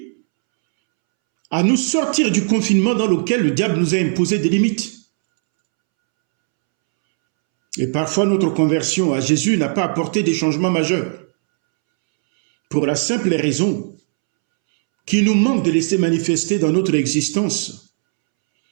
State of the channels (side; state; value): left; silent; 68 dB below the other